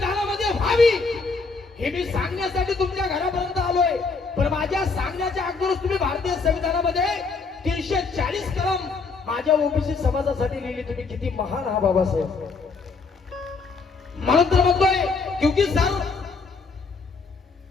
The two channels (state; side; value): quieter; right; 4.4 dB